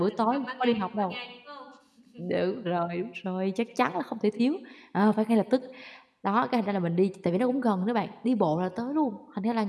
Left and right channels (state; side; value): identical; both; correlation 1.00